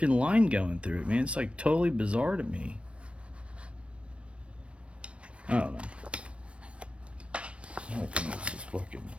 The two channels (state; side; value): late; left; 0.060 ms